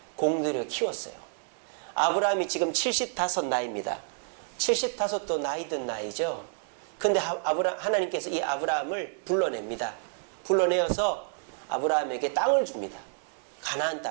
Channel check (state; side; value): silent; left; 58 dB below the other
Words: 공들여 키웠어요. 아브람이 지금 75 나이입니다. 75도 나이 든 나이죠. 근데 하나님께서 이 아브람을 불러냅니다. 불러내어서 아브람에게 땅을 줍니다. 가나안